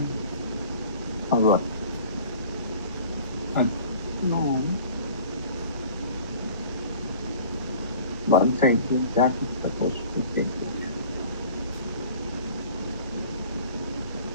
Or what? No. Once I do that, it's supposed to take it.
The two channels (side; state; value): both; inverted; correlation -0.47